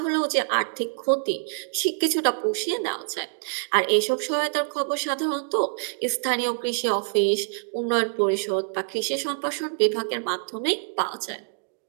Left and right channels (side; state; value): left; silent; digital silence